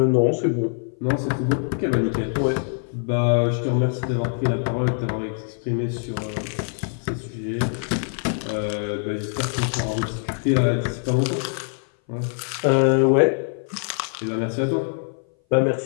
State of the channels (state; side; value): silent; right; 59 dB below the other